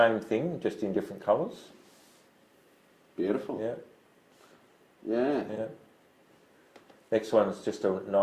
thing, just in different colours. Beautiful. Yeah. Next one is just a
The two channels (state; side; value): identical; both; correlation 1.00